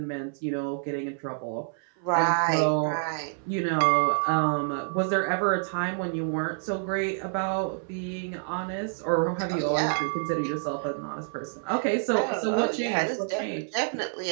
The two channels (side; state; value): left; silent; 60 dB below the other